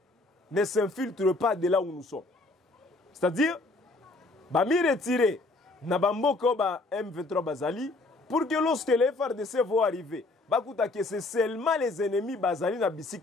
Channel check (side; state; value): right; quieter; 3.0 dB